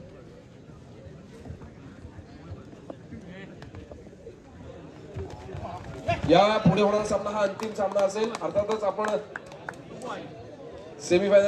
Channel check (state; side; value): identical; both; correlation 1.00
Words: या पुढे होणारा सामना हा अंतिम सामना असेल. अर्थातच आपण